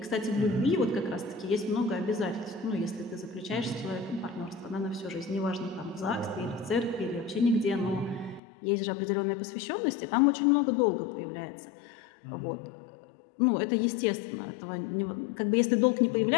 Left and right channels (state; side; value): drops out; right; at 8.4 s